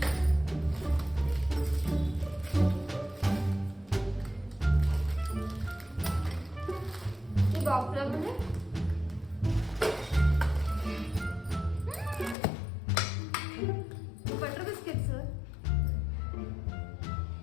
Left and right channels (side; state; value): right; drops out; at 12.4 s